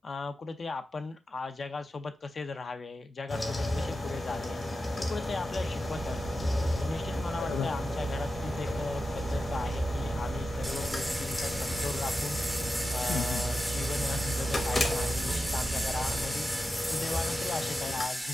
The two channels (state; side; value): normal; both; correlation 0.91